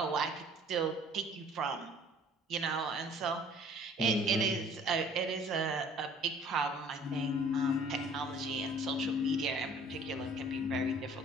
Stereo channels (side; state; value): both; normal; correlation 0.53